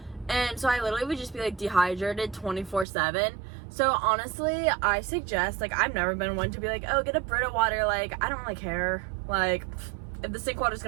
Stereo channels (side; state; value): left; drops out; at 2.9 s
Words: And so I literally would just be like dehydrated 24/7. So honestly, I suggest, like, I've never been one to be like, oh, get a Brita water. Like, I don't really care. Like, if the sink water is